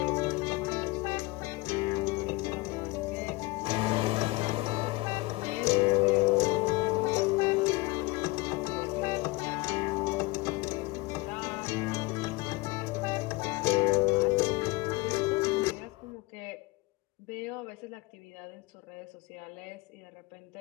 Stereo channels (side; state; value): right; quieter; 22.6 dB